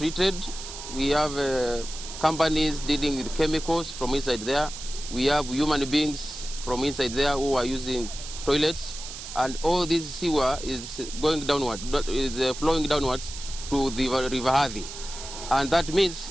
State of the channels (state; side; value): noise; right; hiss, 11 dB below the sound